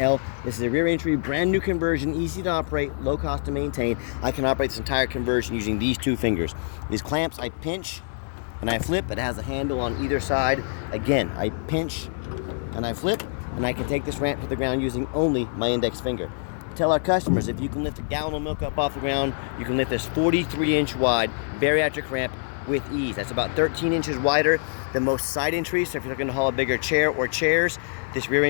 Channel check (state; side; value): silent; right; digital silence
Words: This is a rear entry, brand new conversion, easy to operate, low cost to maintain. I can operate this entire conversion using these two fingers. These clamps I pinch and I flip. It has a handle on either side. Again, I pinch and I flip, and I can take this ramp to the ground using only my index finger. Tell our customers, if you can lift a gallon of milk up off the ground, you can lift this 43-inch wide bariatric ramp with ease. That's about 13 inches wider than most side entries. So if you're looking to haul a bigger chair or chairs, this rear